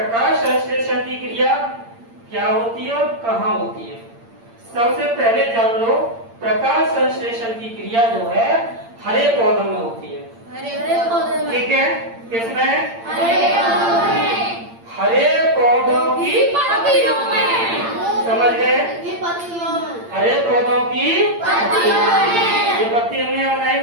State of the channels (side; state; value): left; late; 8.8 ms